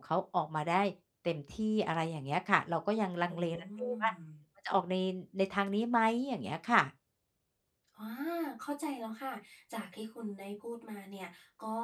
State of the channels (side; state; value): both; identical; correlation 1.00